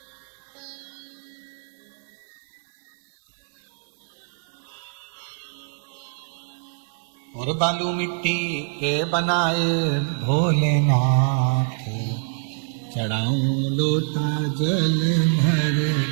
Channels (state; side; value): silent; left; 62 dB below the other